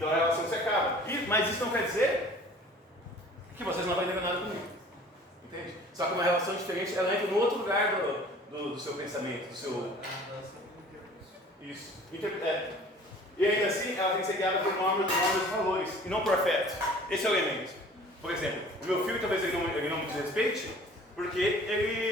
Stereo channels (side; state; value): both; normal; correlation 0.48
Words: a relação se acaba. Mas isso não quer dizer que vocês não aprendem nada comigo. Entende? Só que uma relação diferente, ela entra no outro lugar do seu pensamento, do seu... Isso. E ainda assim, ela tem que ser guiada por normas e valores, e não por afeto. Esse é o elemento. Por exemplo, o meu filho talvez ele não me desrespeite, porque